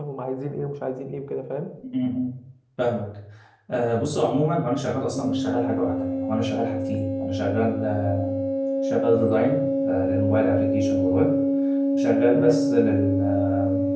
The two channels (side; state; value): both; identical; correlation 1.00